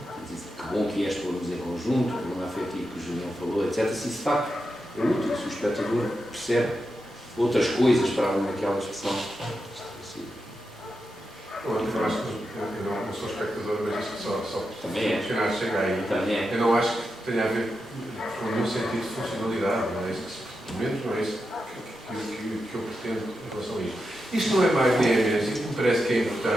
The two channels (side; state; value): both; normal; correlation 0.88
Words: conjunto, o problema afetivo que o Julião falou, etc. Se de facto é útil, se o espectador percebe outras coisas para além daquela expressão. Eu acho que eu não sou espectador, mas isto só Também é. funcionar chega aí. Também é. Eu não acho que tenha a ver com nenhum sentido de funcionalidade, não é isso que, pelo menos não é isso que eu pretendo em relação a isto. Isto não é mais nem é menos, isto me parece que é